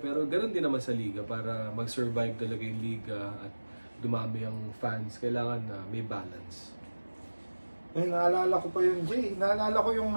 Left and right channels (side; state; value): both; inverted; correlation -1.00